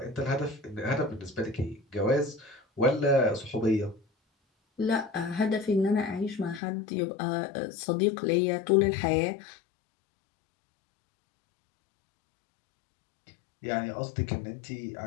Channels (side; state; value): right; drops out; at 6.6 s